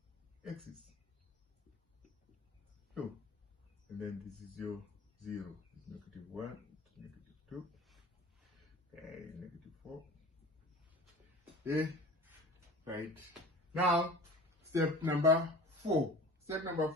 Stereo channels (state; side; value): normal; both; correlation 0.39